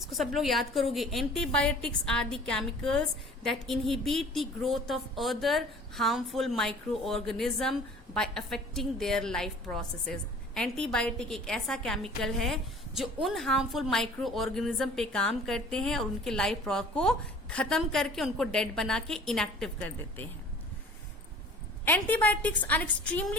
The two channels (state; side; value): normal; both; correlation 0.47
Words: सब लोग याद करोगे. Antibiotics are the chemicals that inhibit the growth of other harmful microorganism by affecting their life processes. Antibiotic एक ऐसा केमिकल है जो उन हार्मफुल माइक्रो ऑर्गेनिज्म पे काम करते हैं और उनके लाइफ को खत्म करके उनको डेड बना के इनएक्टिव कर देते हैं. Antibiotics are